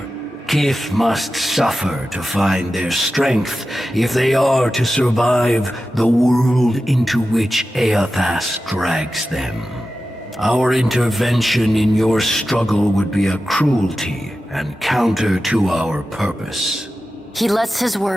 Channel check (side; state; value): both; normal; correlation 0.93